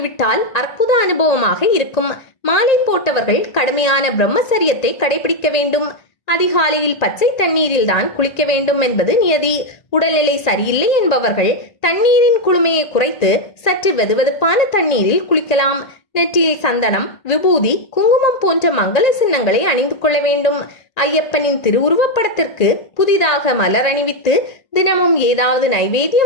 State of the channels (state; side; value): late; right; 1.8 ms